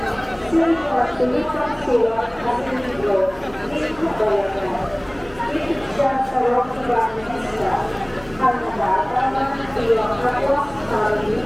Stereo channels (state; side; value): noise; left; hum, 23 dB below the sound